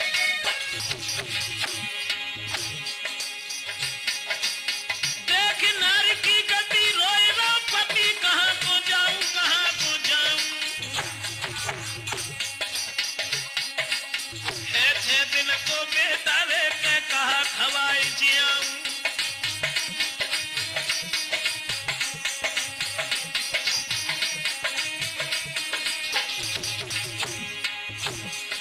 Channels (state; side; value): identical; both; correlation 1.00